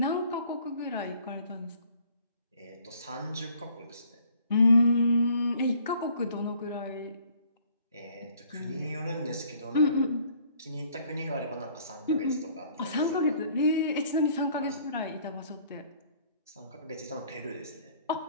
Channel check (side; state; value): both; inverted; correlation -0.59